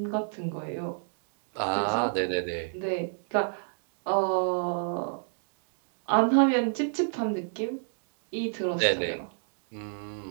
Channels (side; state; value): left; silent; digital silence